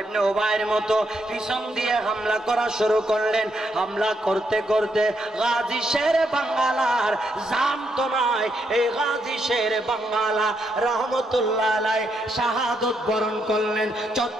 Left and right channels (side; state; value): both; normal; correlation 0.78